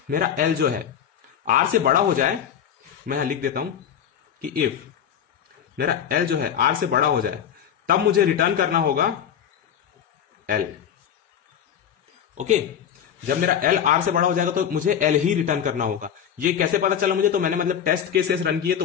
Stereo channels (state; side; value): quieter; right; 8.9 dB